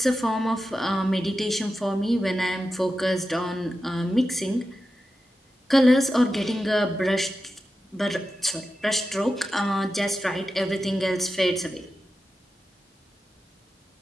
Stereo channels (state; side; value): normal; both; correlation 0.91